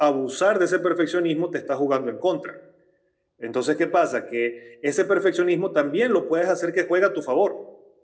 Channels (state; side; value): identical; both; correlation 1.00